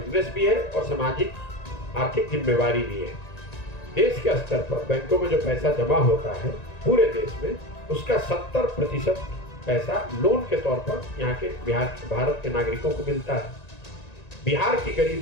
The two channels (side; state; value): right; late; 1.9 ms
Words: भी है और सामाजिक आर्थिक जिम्मेवारी भी है। देश के स्तर पर बैंकों में जो पैसा जमा होता है पूरे देश में, उसका 70% पैसा लोन के तौर पर यहाँ के भारत के नागरिकों को मिलता है। बिहार की गरीब